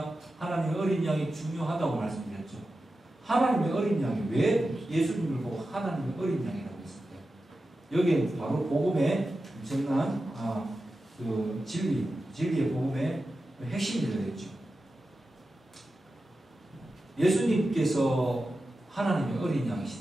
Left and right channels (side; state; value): both; normal; correlation 0.92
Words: 하나님의 어린 양이 중요하다고 말씀드렸죠. 하나님의 어린 양이 왜 예수님을 보고 하나님의 어린 양이라고 했을까요? 여기에 바로 복음의 엄청난 그 진리의 복음의 핵심이 들어있죠. 예수님께서 하나님의 어린